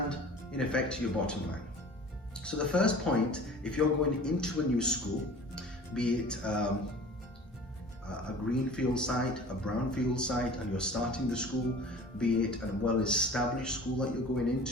in effect to your bottom line. So the first point, if you're going into a new school, be it a greenfield site, a brownfield site, and you're starting the school, be it a well-established school that you're going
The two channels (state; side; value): normal; both; correlation 0.43